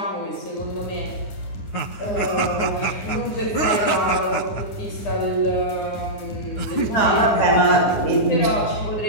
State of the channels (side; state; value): right; late; 9.8 ms